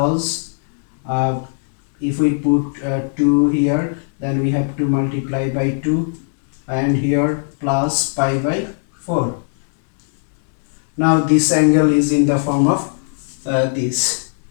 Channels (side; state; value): right; silent; digital silence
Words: if we put 2 here, then we have to multiply by 2, and here plus pi by 4. Now this angle is in the form of this.